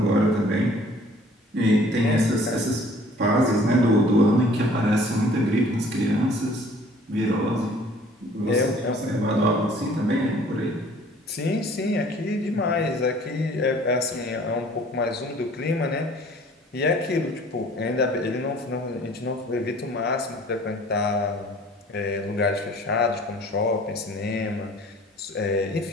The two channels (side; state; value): both; normal; correlation 0.52